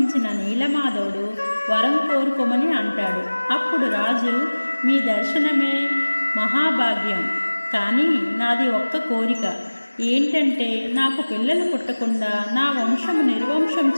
నీలమాధవుడు వరం కోరుకోమని అంటాడు. అప్పుడు రాజు, మీ దర్శనమే మహాభాగ్యం, కానీ నాది ఒక్క కోరిక ఏంటంటే నాకు పిల్లలు పుట్టకుండా నా వంశము నిర్వంశం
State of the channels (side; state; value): both; inverted; correlation -1.00